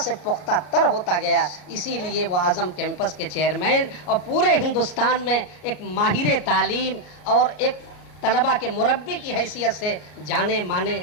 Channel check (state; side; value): late; right; 33 ms